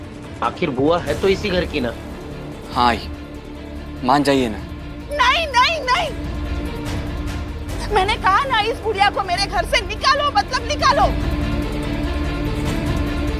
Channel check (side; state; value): both; identical; correlation 1.00